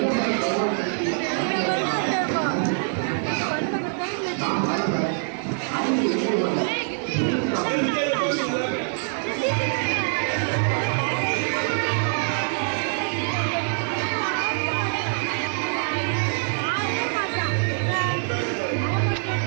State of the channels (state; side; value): silent; left; 62 dB below the other